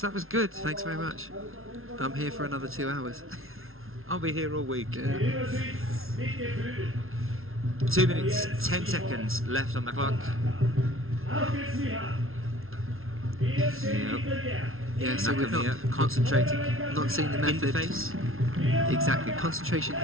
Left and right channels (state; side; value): late; left; 0.61 ms